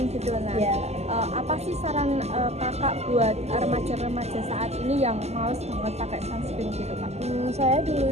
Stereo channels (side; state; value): left; late; 0.31 ms